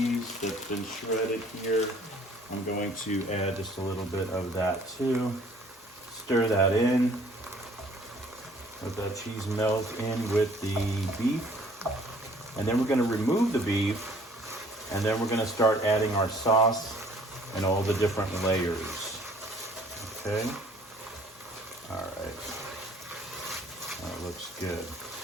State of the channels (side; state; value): both; normal; correlation 0.56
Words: that's been shredded here. I'm going to add just a little bit of that too. Stir that in. Let that cheese melt in with the beef, and then we're going to remove the beef, and then we're going to start adding our sauce and all the different layers. Okay. All right. That looks good.